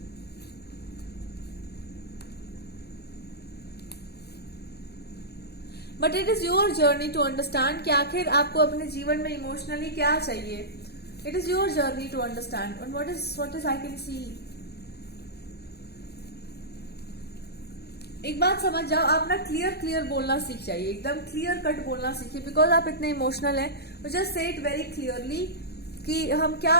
But it is your journey to understand कि आखिर आपको अपने जीवन में इमोशनली क्या चाहिए. It is your journey to understand. And what is I can see. एक बात समझ जाओ, आप ना क्लियर बोलना सीख जाइए, एकदम क्लियर कट बोलना सीखिए. बिकॉज आप इतने इमोशनल हैं, just say it very clearly कि हम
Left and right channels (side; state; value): right; late; 0.47 ms